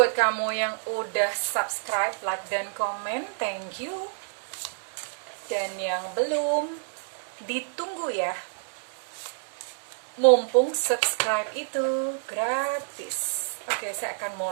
kamu yang udah subscribe, like, dan komen. Thank you. Dan yang belum, ditunggu ya. Mumpung subscribe itu gratis. Oke, saya akan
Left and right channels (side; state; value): left; silent; digital silence